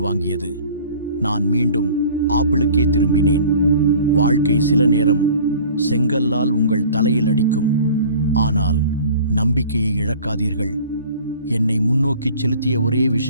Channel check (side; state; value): both; inverted; correlation -0.47